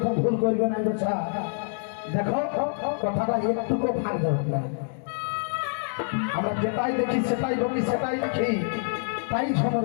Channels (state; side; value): silent; right; digital silence